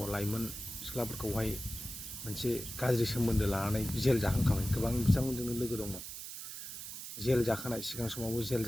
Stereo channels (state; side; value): noise; right; hiss, 9 dB below the sound